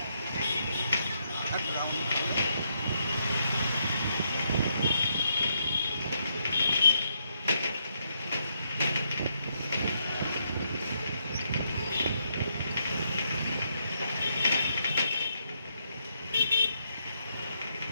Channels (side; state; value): both; inverted; correlation -0.77